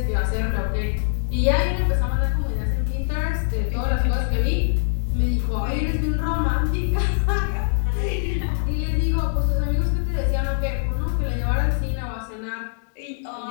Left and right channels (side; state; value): right; silent; digital silence